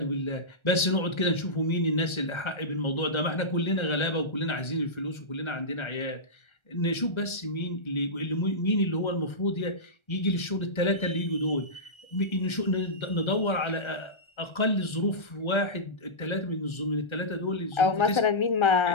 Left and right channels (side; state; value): right; late; 1.3 ms